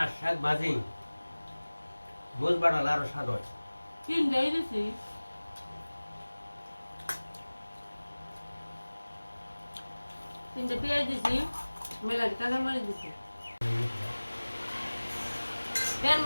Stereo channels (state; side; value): inverted; both; correlation -1.00